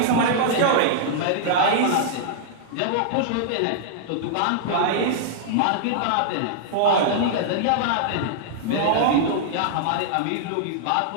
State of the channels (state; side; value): different; both; correlation -0.01